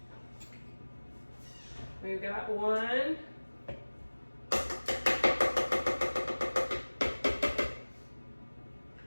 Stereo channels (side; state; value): both; inverted; correlation -1.00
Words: We've got 1.